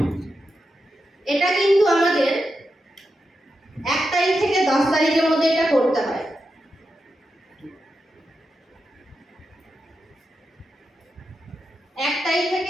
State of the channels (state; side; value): normal; both; correlation 0.88